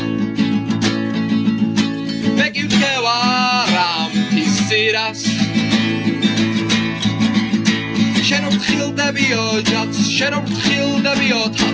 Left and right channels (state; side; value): identical; both; correlation 1.00